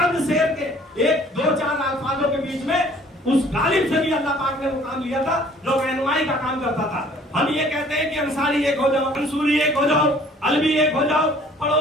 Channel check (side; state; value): both; normal; correlation 0.55